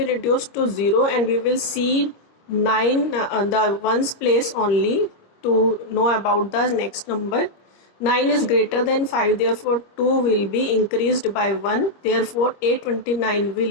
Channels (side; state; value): right; late; 25 ms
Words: reduced to 0 and we will see 9 the ones place only to know about the next number. 9 is greater than 5, therefore 2 will be increased by 1, therefore 829